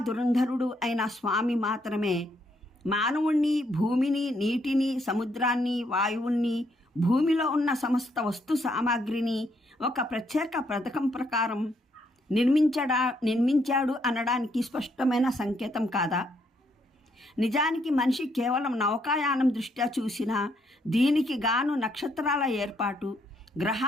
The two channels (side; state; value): both; normal; correlation 0.73